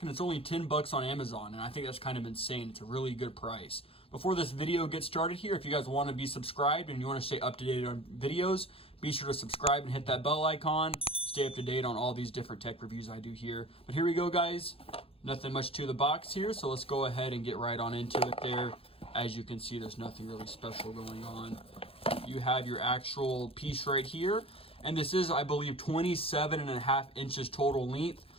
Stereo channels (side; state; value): right; late; 0.27 ms